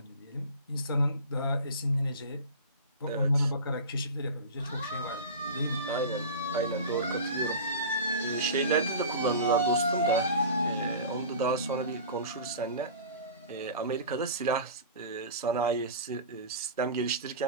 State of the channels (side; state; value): both; inverted; correlation -0.34